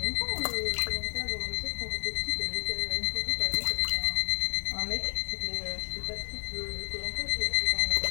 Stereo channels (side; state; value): right; silent; 57 dB below the other